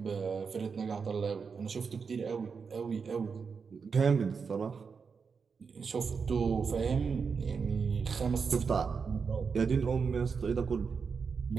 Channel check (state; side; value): quieter; left; 5.6 dB